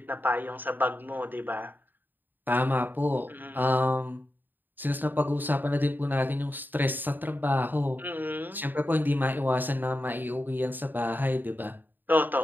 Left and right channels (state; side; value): late; left; 0.091 ms